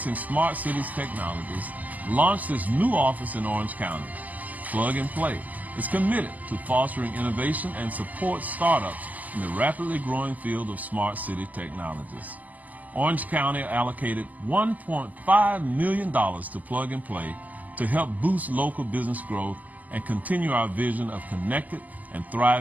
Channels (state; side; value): late; left; 0.079 ms